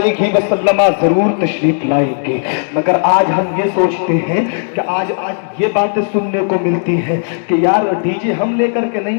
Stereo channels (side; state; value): right; silent; 70 dB below the other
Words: वसल्लम जरूर तशरीफ लाएंगे। मगर आज हम ये सोचते हैं कि आज ये बातें सुनने को मिलती है कि यार डीजे हम लेकर के